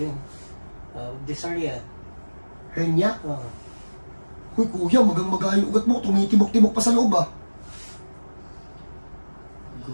Dyspnea. Hernia? Huy, kuya, magang-maga yung ugat mo. Tumitibok-tibok pa sa loob, ah.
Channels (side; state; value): both; inverted; correlation -1.00